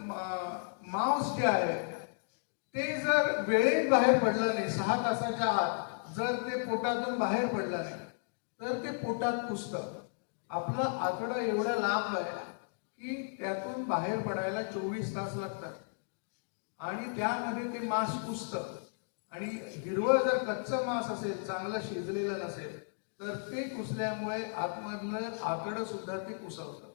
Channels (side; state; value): right; silent; digital silence